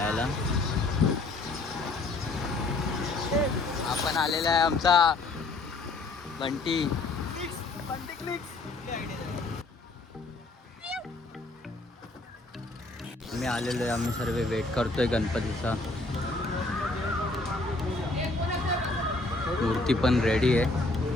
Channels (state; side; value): quieter; right; 3.2 dB